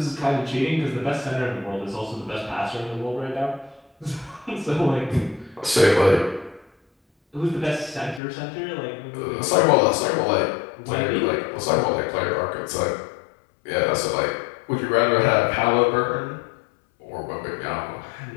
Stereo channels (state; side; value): drops out; right; at 8.2 s